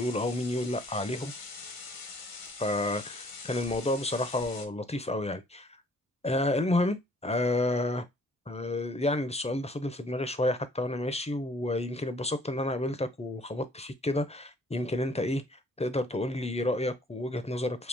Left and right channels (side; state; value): both; normal; correlation 0.59